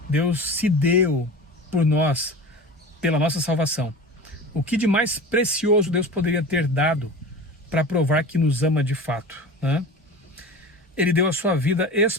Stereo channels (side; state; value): both; normal; correlation 0.33